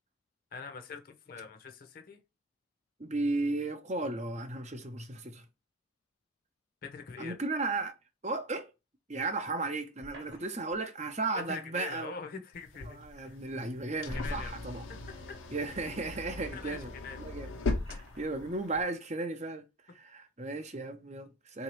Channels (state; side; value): normal; both; correlation 0.27